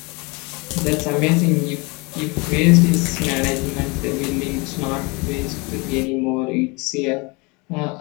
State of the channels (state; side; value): quieter; right; 27.9 dB